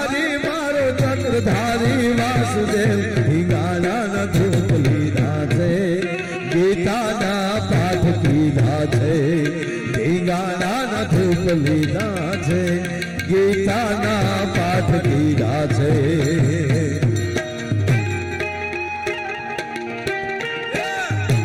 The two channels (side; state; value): both; identical; correlation 1.00